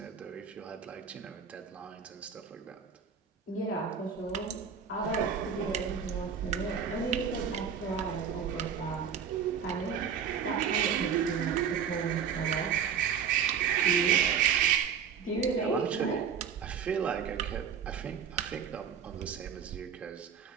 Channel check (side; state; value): left; quieter; 7.3 dB